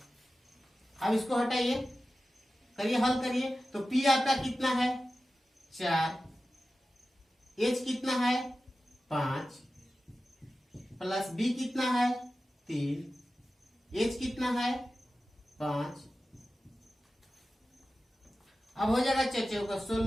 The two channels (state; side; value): normal; both; correlation 0.94